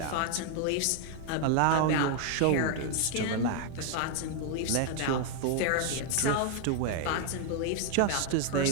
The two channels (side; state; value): both; different; correlation 0.00